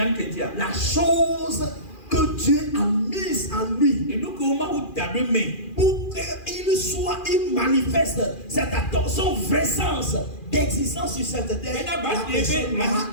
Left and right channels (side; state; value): right; late; 2.4 ms